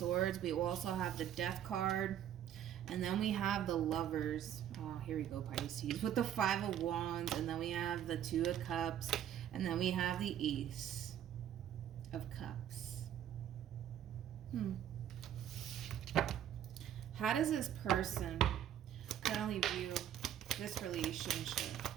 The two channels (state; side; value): quieter; left; 10.5 dB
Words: We also have the Death card. And then we have the Lovers. Oh, here we go, Pisces. With the Five of Wands. And then we have the Two of Cups. And then we have the Ace of Cups. How does this person currently view this relationship